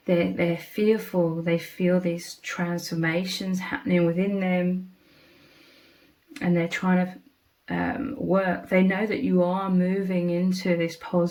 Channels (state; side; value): identical; both; correlation 1.00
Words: they're fearful. They feel these transformations happening within them, and they're trying to work. They know that you are moving into this